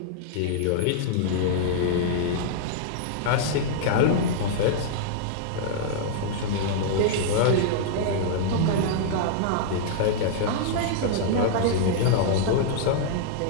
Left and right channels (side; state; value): both; different; correlation -0.01